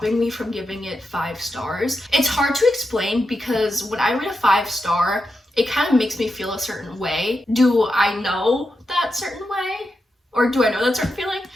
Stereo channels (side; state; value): both; normal; correlation 0.87